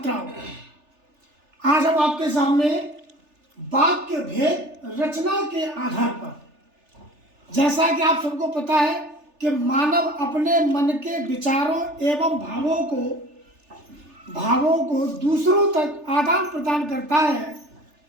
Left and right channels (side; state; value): left; late; 3.4 ms